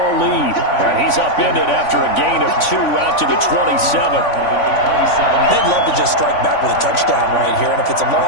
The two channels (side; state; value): right; late; 3.5 ms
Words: lead. And he's upended after a gain of 2 out to the 27. They'd love to just strike back with a touchdown right here, and if it's a